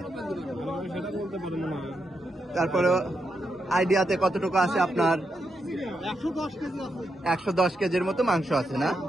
তারপরে আইডিয়াতে কতটুকু আছে আপনার? 110 কেজির মতো মাংস আছে না?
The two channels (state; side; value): normal; both; correlation 0.83